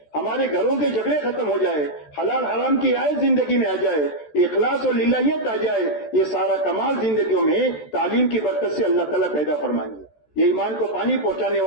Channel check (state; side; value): late; right; 14 ms